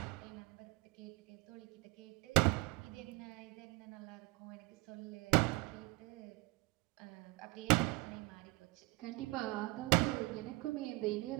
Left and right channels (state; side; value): quieter; left; 24.0 dB